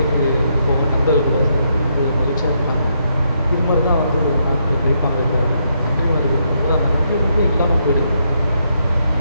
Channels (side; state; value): both; inverted; correlation -0.77